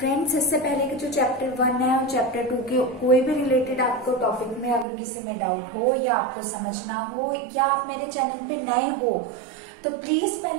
इससे पहले के जो चैप्टर 1 है और चैप्टर 2 के कोई भी रिलेटेड आपको टॉपिक में अगर किसी में डाउट हो या आपको समझना हो या आप मेरे चैनल पे नए हो तो प्लीज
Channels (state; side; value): drops out; left; at 4.9 s